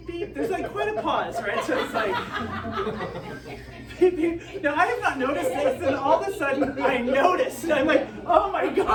beep. There's like quite a pause, right? So it's like, beep, beep. Now, I have not noticed this, and all of a sudden I noticed, and I'm like, oh my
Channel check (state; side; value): identical; both; correlation 1.00